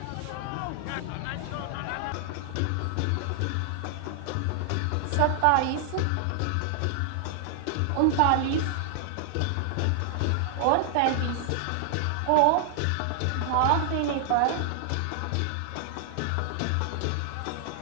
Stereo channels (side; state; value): both; different; correlation -0.01